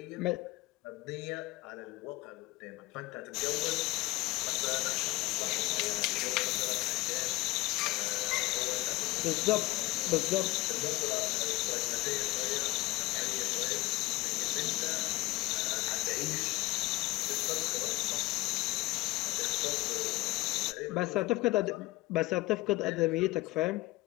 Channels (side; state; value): right; quieter; 20.2 dB